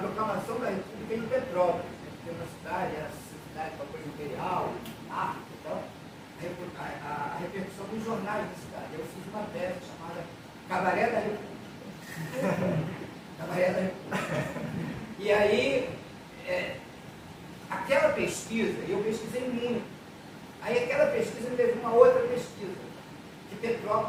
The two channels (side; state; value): both; identical; correlation 1.00